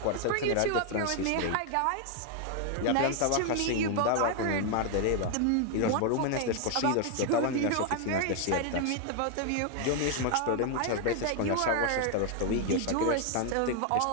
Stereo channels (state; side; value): different; both; correlation 0.00